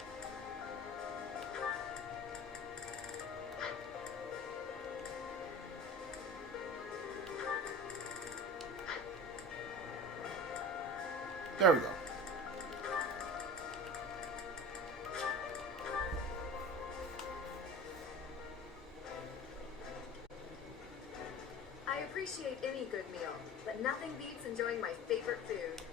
There we go. I appreciate any good meal, but nothing beats enjoying my favorite food.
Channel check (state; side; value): normal; both; correlation 0.36